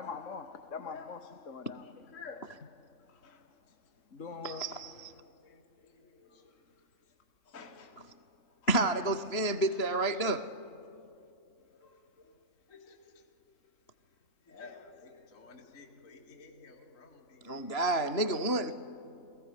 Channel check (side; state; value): right; late; 3.0 ms